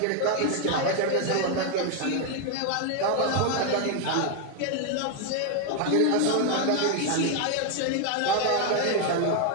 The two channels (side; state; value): both; different; correlation 0.01